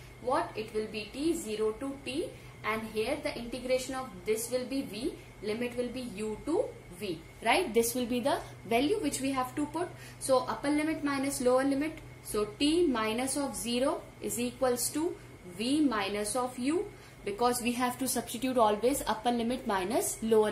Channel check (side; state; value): both; identical; correlation 1.00